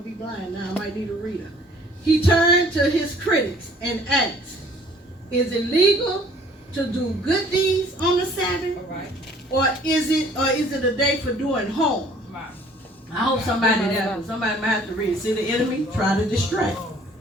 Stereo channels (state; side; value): normal; both; correlation 0.55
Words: to be blind now. I might need a reader. He turned to his critics and asked, "Is it legal to do good deeds on the Sabbath? Or is it a day for doing harm?" I hope somebody might have to read it. See the enemy? Try to distract.